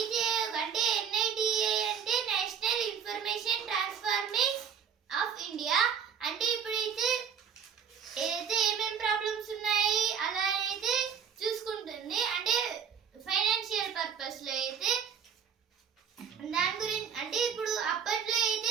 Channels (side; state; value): left; quieter; 7.5 dB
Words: ఆయోగ్ అంటే NITA అంటే national information transforming of India. అంటే ఇప్పుడైతే ఏదైతే ఏమేం ప్రాబ్లమ్స్ ఉన్నాయి అలా అయితే చూసుకుంటుంది. అంటే ఫైనాన్షియల్ పర్పస్ లో అయితే దాని గురించి అంటే ఇప్పుడు అప్పట్లో అయితే